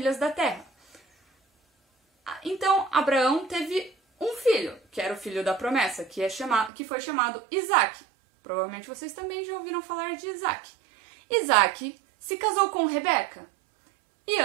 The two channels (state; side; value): drops out; left; at 6.7 s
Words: da terra. Então, Abraão teve um filho, que era o filho da promessa, que foi chamado Isaac. Provavelmente vocês também já ouviram falar de Isaac. Isaac se casou com Rebeca e